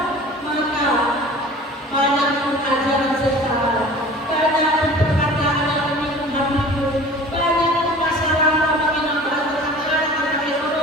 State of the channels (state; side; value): normal; both; correlation 0.43